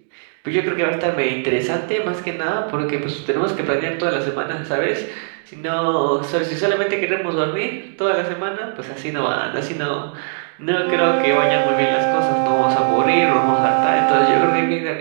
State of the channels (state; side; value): silent; left; digital silence